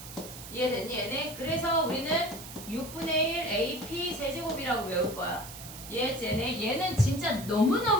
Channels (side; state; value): right; noise; hiss, 13 dB below the sound